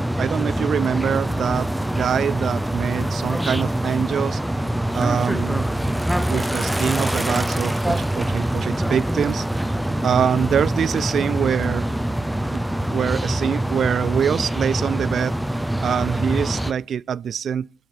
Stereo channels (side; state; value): left; quieter; 3.5 dB